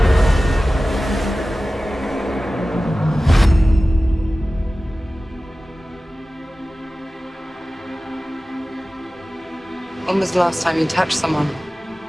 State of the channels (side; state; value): both; normal; correlation 0.96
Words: When was the last time you touched someone?